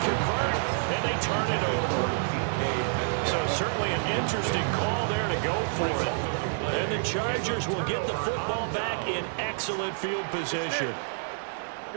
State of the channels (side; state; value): left; silent; digital silence